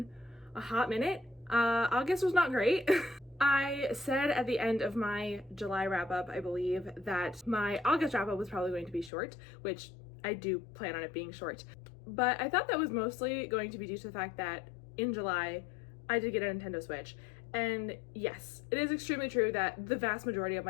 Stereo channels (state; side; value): drops out; right; at 9.1 s